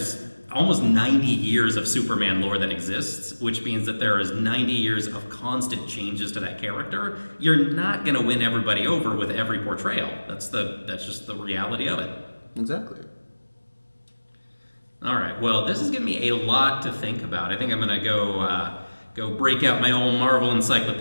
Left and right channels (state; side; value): inverted; both; correlation -1.00